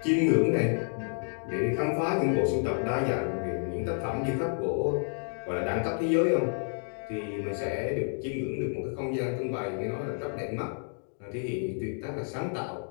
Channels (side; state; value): right; silent; 58 dB below the other